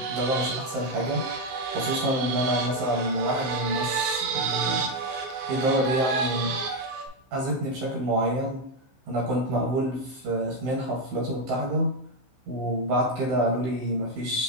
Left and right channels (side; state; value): left; late; 15 ms